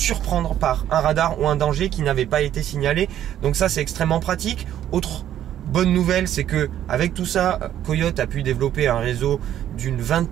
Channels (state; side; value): quieter; left; 11.3 dB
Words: par un radar ou un danger qui n'avait pas été signalé. Donc ça, c'est extrêmement pratique. Autre bonne nouvelle, c'est que avec tout ça, Coyote a pu développer un réseau d'une